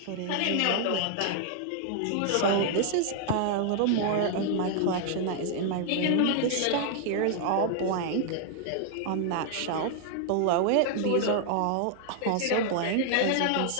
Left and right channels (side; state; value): both; different; correlation 0.00